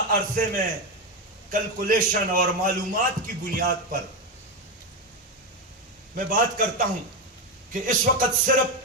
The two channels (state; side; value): normal; both; correlation 0.12